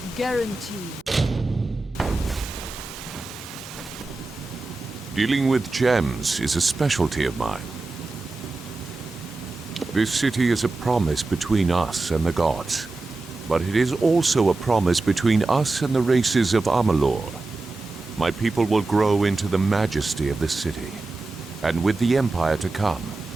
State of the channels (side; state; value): left; quieter; 3.4 dB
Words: guaranteed. Dealing with gems is a specialty of mine. This city is a promise between us and the gods, but it is also a promise between us and the races of Amalur. My people will grow into the majesty of the city, and with the Empire to come,